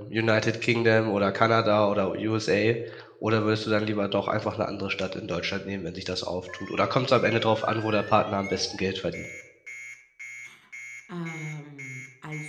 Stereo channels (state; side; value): identical; both; correlation 1.00